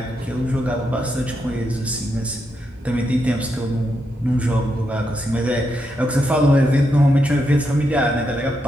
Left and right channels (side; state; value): both; normal; correlation 0.82